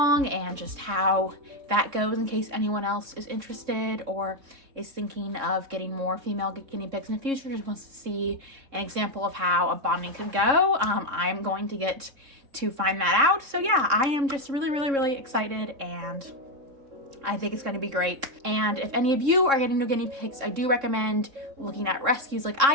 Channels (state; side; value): late; left; 3.6 ms